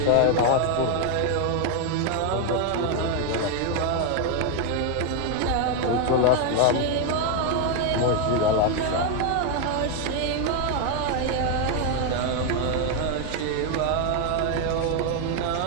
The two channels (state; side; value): different; both; correlation 0.01